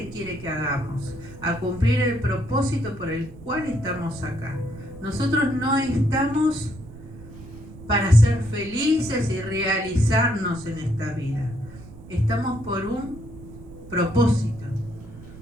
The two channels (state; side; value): noise; right; rumble, 16 dB below the sound